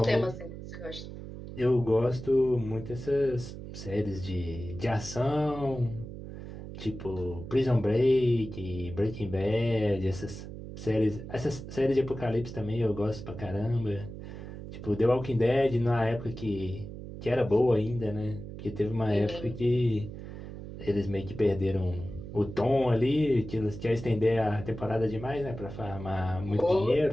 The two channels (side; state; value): right; noise; hum, 11 dB below the sound